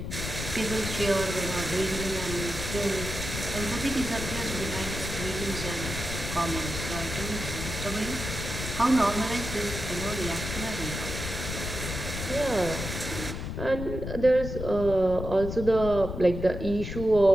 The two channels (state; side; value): noise; left; rumble, 6 dB below the sound